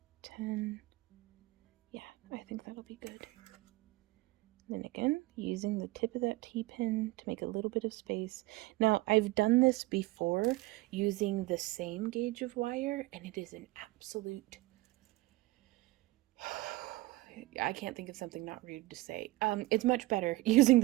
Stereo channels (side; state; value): left; quieter; 19.6 dB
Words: 10. Yeah, I think that'll be good. Then again, using the tip of that T-pin to make a little bit of space. Now, I've done this before using the same gauge of wire, and it is an absolute... I can't think of something not rude to say. It's much better using